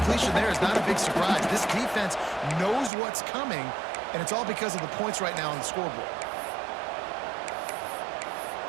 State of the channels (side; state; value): left; drops out; at 2.9 s